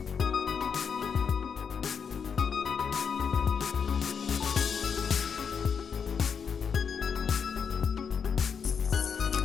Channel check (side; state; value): right; quieter; 6.6 dB